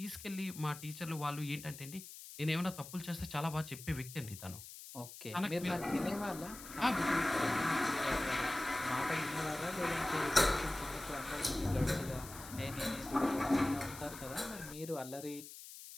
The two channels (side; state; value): left; noise; hiss, 13 dB below the sound